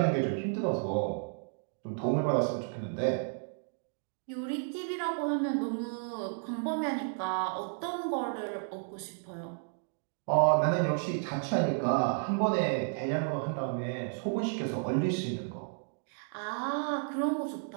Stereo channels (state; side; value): silent; left; 56 dB below the other